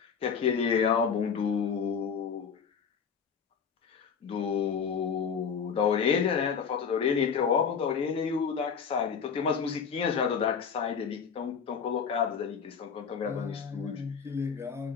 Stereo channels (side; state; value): right; quieter; 6.6 dB